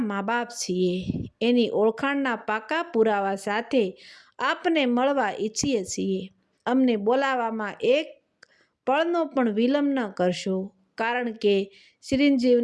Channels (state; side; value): identical; both; correlation 1.00